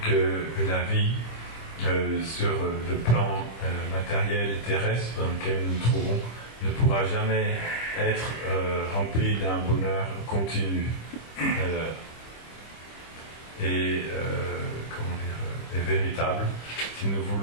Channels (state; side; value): late; right; 25 ms